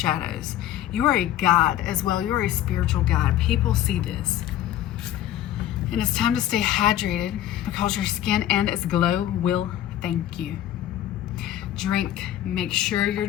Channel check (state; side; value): quieter; right; 12.3 dB